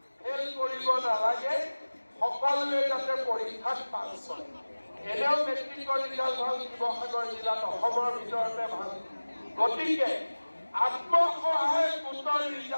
ফেল কৰিব নালাগে সকলোৱে যাতে পৰীক্ষাত পাছ হয় এনেও মেট্ৰিকৰ ৰিজাল্ট ভাল শিৱসাগৰ জিলাত অসমৰ ভিতৰতে ভাল গতিকে আত্মসহায়ক গোটৰ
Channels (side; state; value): both; inverted; correlation -1.00